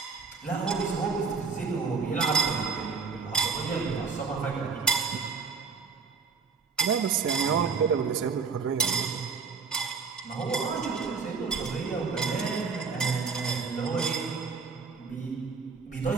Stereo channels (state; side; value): quieter; left; 5.1 dB